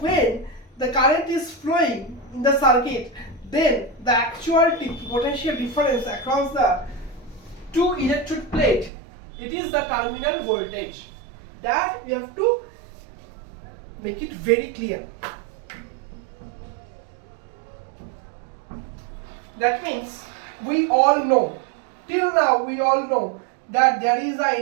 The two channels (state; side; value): drops out; left; at 8.9 s